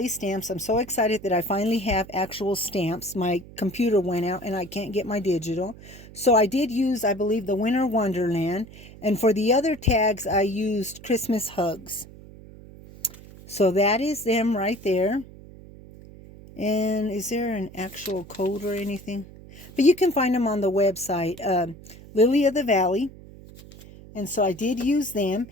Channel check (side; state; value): right; noise; hum, 18 dB below the sound